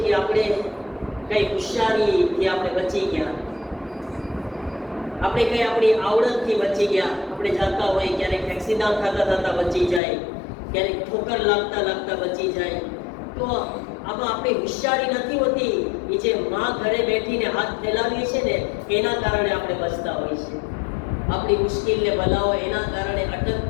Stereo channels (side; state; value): right; drops out; at 10.0 s